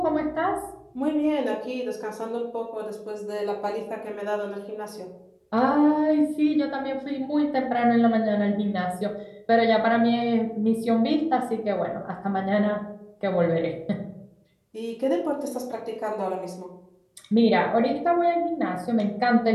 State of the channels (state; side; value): identical; both; correlation 1.00